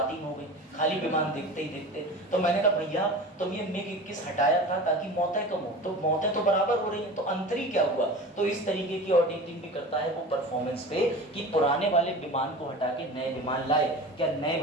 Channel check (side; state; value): both; normal; correlation 0.35